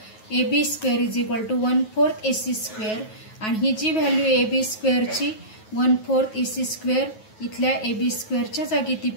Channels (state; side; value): late; right; 9.3 ms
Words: A B square is equal to 1/4 A C square आणि ही जी व्हॅल्यू ए बी स्क्वेअरची 1/4 ए सी स्क्वेअर इथल्या ए बी स्क्वेअरच्या जागी ती